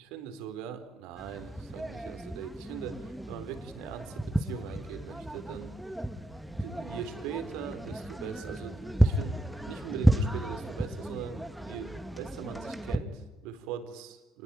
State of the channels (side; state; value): both; normal; correlation 0.84